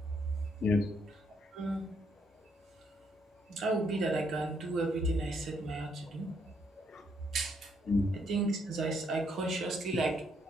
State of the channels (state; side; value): normal; both; correlation 0.73